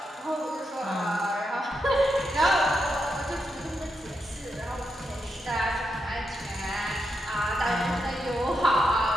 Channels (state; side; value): normal; both; correlation 0.84